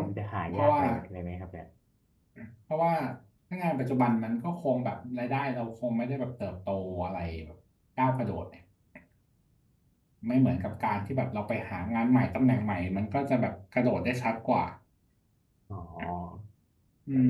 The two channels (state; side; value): identical; both; correlation 1.00